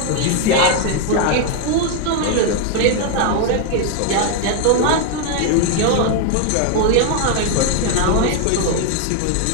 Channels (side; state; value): both; different; correlation 0.01